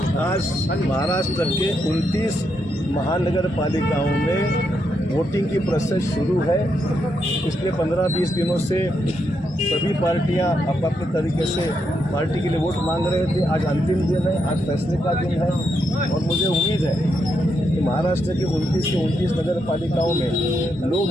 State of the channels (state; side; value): normal; both; correlation 0.81